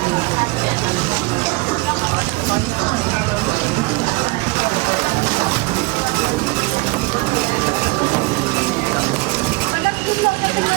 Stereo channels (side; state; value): left; quieter; 24.9 dB